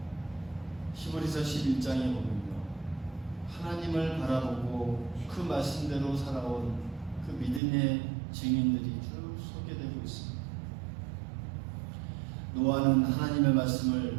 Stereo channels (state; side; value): drops out; left; at 7.6 s